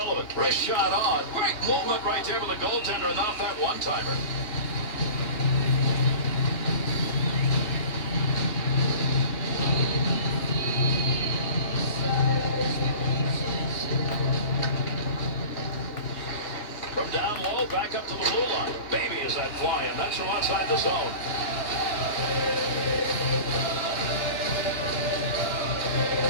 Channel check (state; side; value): late; right; 3.0 ms